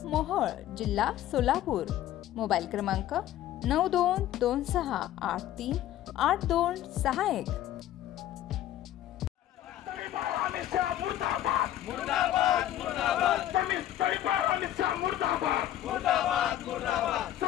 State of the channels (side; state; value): right; quieter; 12.7 dB